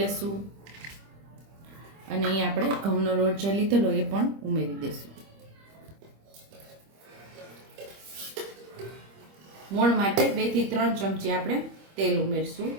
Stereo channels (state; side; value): late; left; 25 ms